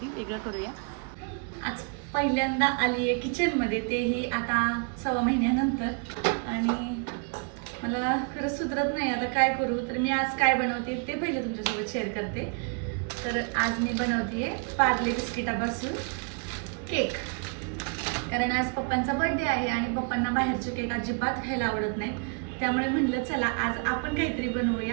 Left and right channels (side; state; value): left; quieter; 37.8 dB